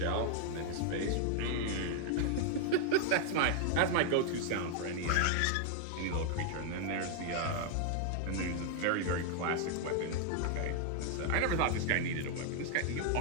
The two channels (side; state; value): both; different; correlation 0.00